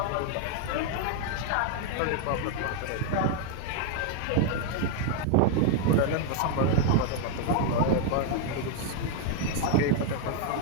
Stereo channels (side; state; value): both; different; correlation 0.00